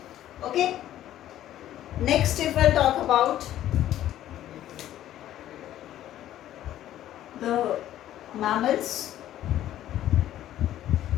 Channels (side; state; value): right; quieter; 12.6 dB